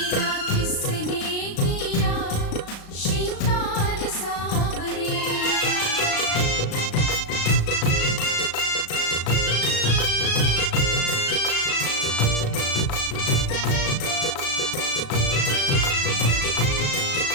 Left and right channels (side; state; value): right; late; 36 ms